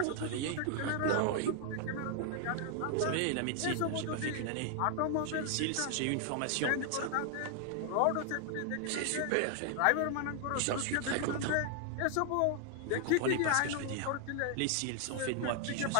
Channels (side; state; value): both; different; correlation 0.00